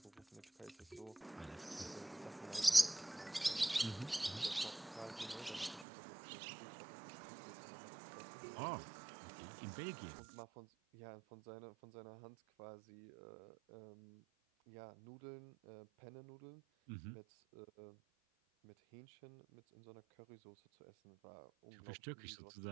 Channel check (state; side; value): drops out; left; at 5.9 s